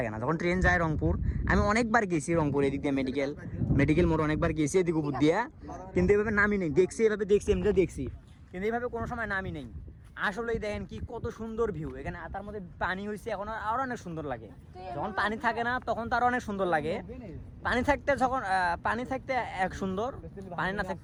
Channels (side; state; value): both; identical; correlation 1.00